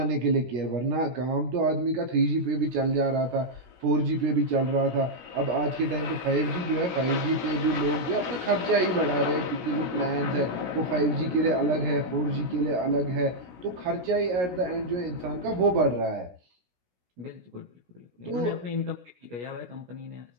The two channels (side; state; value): left; late; 17 ms